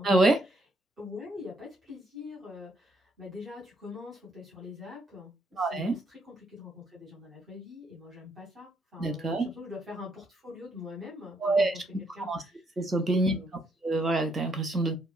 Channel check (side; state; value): both; normal; correlation 0.72